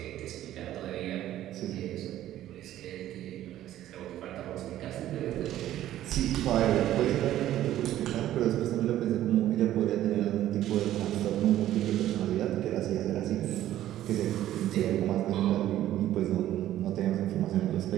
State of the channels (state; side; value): quieter; left; 13.1 dB